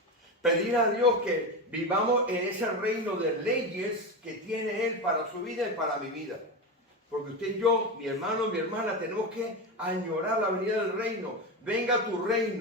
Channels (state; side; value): normal; both; correlation 0.18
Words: Pedir a Dios que vivamos en ese reino de leyes que tiene Él para su vida y para mi vida. Porque usted y yo, mi hermano, mi hermana, tenemos que añorar la venida del reino. Venga a tu